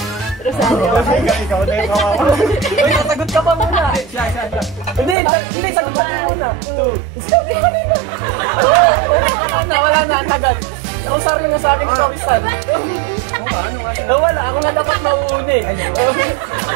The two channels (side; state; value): left; drops out; at 5.2 s